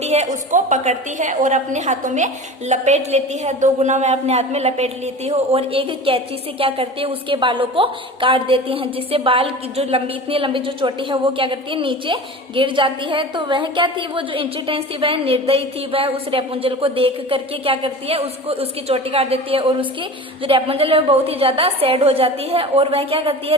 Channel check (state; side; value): normal; both; correlation 0.34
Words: है उसको पकड़ती है और अपने हाथों में लपेट लेती है। 2 गुना वह अपने हाथ में लपेट लेती है और एक कैंची से क्या करती है, उसके बालों को काट देती है, जिससे बाल की जो इतनी लंबी जो चोटी है वो क्या करती है, नीचे गिर जाती है। तो वह क्या थी, वो जो इंचिट्रेंस थी वह निर्दयी थी, वह उस रेपुंजल को देख करके क्या करती है, उसकी चोटी काट देती है और उसकी जो रेपुंजल है वो बहुत ही ज्यादा सैड हो जाती है और वह क्या करती है,